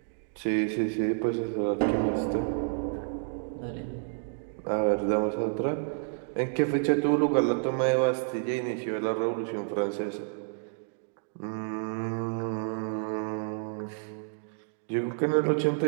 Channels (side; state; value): left; silent; digital silence